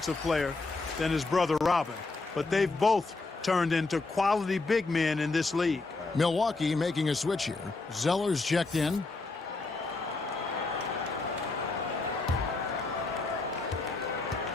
player than his brother Robin. But they've both turned into quality big men in this league. Milwaukee making a switch here. Zeller's checked in.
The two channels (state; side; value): quieter; right; 3.6 dB